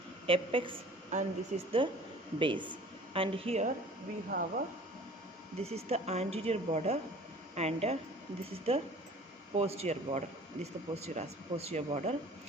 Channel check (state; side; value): normal; both; correlation 0.47